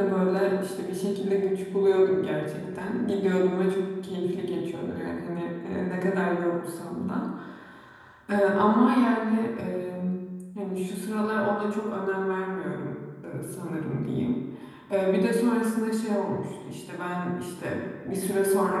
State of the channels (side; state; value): both; identical; correlation 1.00